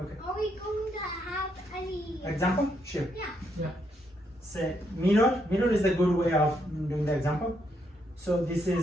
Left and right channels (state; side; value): normal; both; correlation 0.76